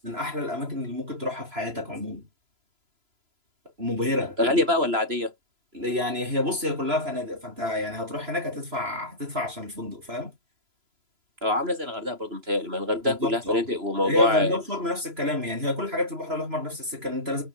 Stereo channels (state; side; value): late; left; 3.0 ms